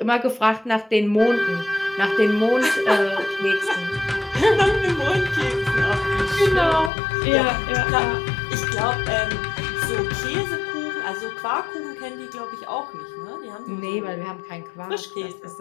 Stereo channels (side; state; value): right; drops out; at 6.9 s